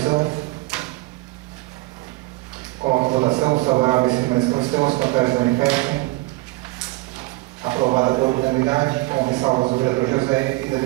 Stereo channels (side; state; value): left; quieter; 21.5 dB